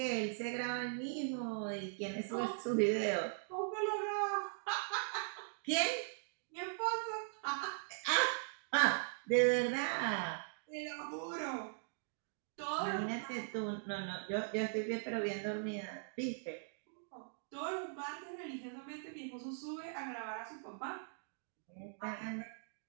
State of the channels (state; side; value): silent; left; digital silence